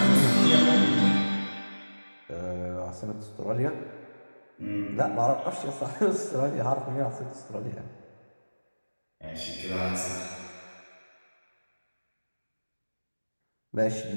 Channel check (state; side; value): inverted; both; correlation -1.00